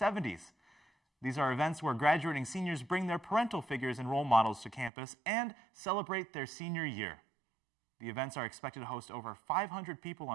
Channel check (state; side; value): drops out; left; at 4.9 s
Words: These are events where graduating seniors bring their parental figures and role models to campus and celebrate their senior year. The events are expected to host over 500 people